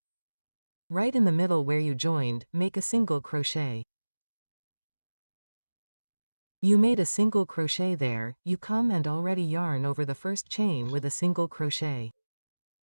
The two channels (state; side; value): inverted; both; correlation -1.00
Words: Right in the middle where you joined, make a single crochet. You made a single crochet there, you come and already yarn over the first chain with a single crochet.